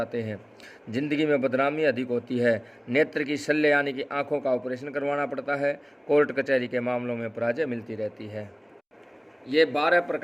हैं। जिंदगी में बदनामी अधिक होती है। नेत्र की शल्य यानी कि आंखों का ऑपरेशन करवाना पड़ता है। कोर्ट कचहरी के मामलों में पराजय मिलती रहती है। ये 12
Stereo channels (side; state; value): both; identical; correlation 1.00